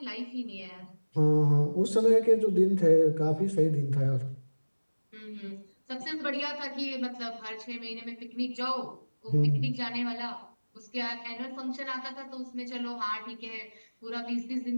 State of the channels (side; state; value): both; inverted; correlation -1.00